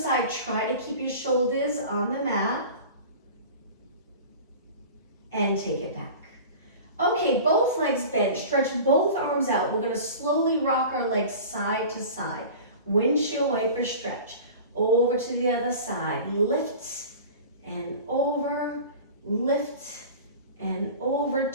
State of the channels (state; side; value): inverted; both; correlation -0.37